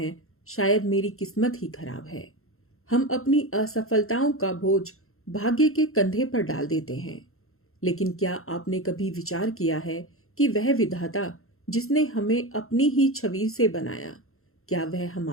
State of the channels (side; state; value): right; late; 0.62 ms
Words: शायद मेरी किस्मत ही खराब है। हम अपनी असफलताओं का बोझ भाग्य के कंधे पर डाल देते हैं। लेकिन क्या आपने कभी विचार किया है कि वह विधाता जिसने हमें अपनी ही छवि से बनाया, क्या वह